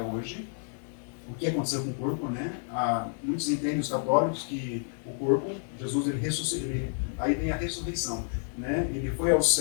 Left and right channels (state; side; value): silent; right; 58 dB below the other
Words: hoje, o que aconteceu com o corpo, né? Muitos entendem, os católicos, que o corpo, Jesus, ele ressuscitou, aí vem a ressurreição, né? Ele foi aos